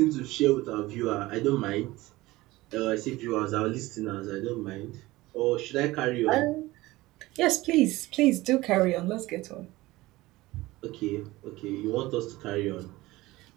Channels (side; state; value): left; quieter; 19.1 dB